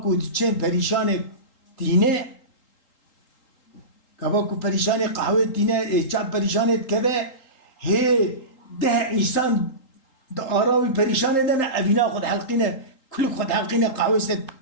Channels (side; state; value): right; late; 3.8 ms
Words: تشين بريشان دينه Kavaku perişane kahve dine çap perişane keve he de insan da aravi perişane dene evina khod halqine kul khod halqine kahve set